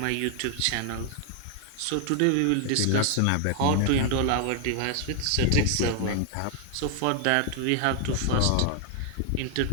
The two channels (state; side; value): different; both; correlation 0.00